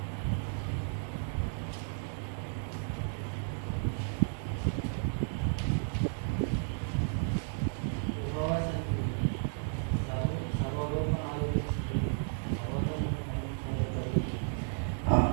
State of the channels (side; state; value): left; silent; digital silence